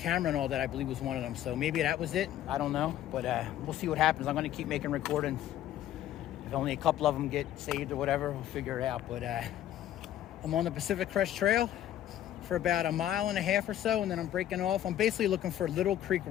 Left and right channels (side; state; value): right; quieter; 12.0 dB